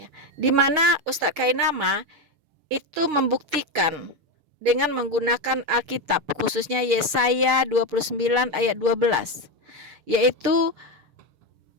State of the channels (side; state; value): left; late; 6.8 ms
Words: di mana Ustadz Kainama itu membuktikan dengan menggunakan Alkitab, khususnya Yesaya 29 ayat 12. Yaitu